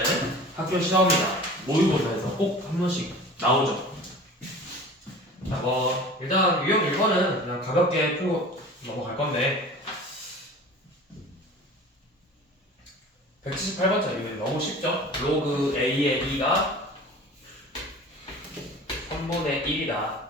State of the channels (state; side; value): normal; both; correlation 0.40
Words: 학교 시험이나 모의고사에서 꼭 한 번씩 나오죠. 자, 일단 유형 1번은 그냥 가볍게 풀고 넘어갈 건데 178번짜리 너무 쉽죠? 로그 A의 2가 3분의 1이다.